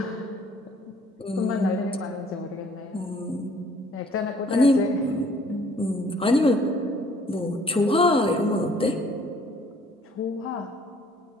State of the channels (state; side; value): normal; both; correlation 0.59